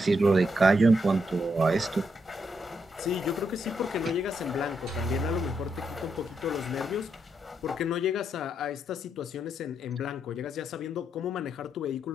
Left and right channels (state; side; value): normal; both; correlation 0.79